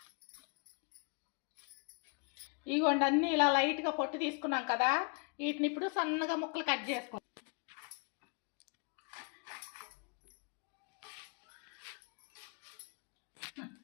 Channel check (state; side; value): quieter; right; 35.0 dB